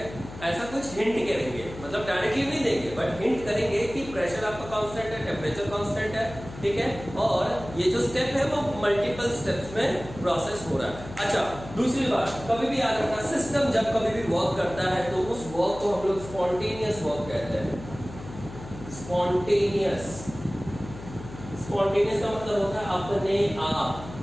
ऐसा कुछ हिंट करेंगे, मतलब डायरेक्टली नहीं देंगे बट हिंट करेंगे कि प्रेशर आपका कांस्टेंट है, टेम्परेचर कांस्टेंट है। ठीक है, और ये जो स्टेप है वो मल्टीपल स्टेप्स में प्रोसेस हो रहा है। अच्छा, दूसरी बात कभी भी याद रखना, सिस्टम जब कभी भी वर्क करता है तो उस वर्क को हम लोग स्पॉन्टेनियस वर्क कहते हैं। स्पॉन्टेनियस का मतलब होता है अपने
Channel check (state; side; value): noise; left; hum, 14 dB below the sound